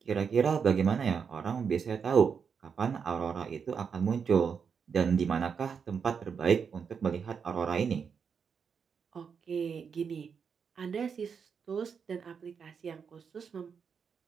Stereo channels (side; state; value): left; quieter; 6.4 dB